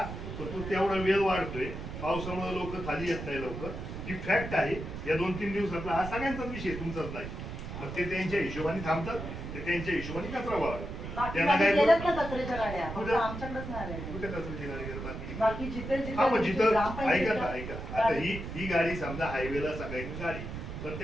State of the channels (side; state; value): right; noise; rumble, 8 dB below the sound